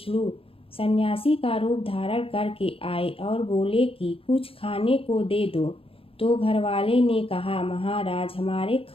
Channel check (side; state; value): right; late; 0.27 ms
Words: सन्यासी का रूप धारण करके आए और बोले कि कुछ खाने को दे दो। तो घर वाले ने कहा, महाराज हमारे